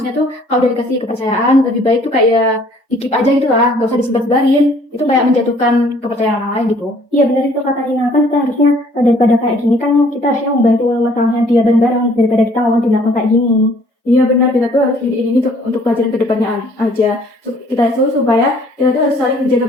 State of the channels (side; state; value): both; normal; correlation 0.58